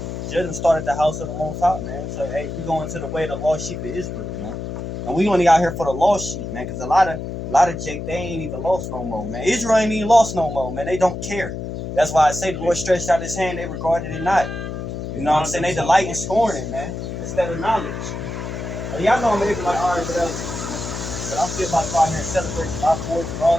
Judgment started at the house of the Most High, man. So, hey, we going to the way of the lost sheep of Israel, man. And we only out here for the lost sheep, man. Because a lot of Jake, they ain't even lost no more, man. Israel ain't even lost no more, man. They don't care. That's why I say the Lord stretched out his hand, they regarded it not. You know what I'm saying? They delight in scorning, man, instead of knowledge. And y'all know I'm able like, all right, whatever. But I'm still about to go out here and celebrate my boys and all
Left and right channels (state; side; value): noise; left; hum, 6 dB below the sound